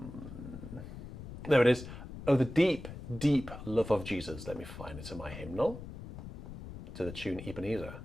it is. Oh, the deep, deep love of Jesus. Let me find it in my hymnal. To the tune Ebenezer.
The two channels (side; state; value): left; noise; rumble, 11 dB below the sound